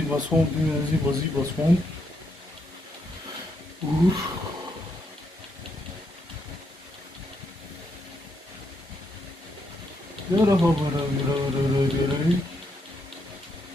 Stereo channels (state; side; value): normal; both; correlation 0.78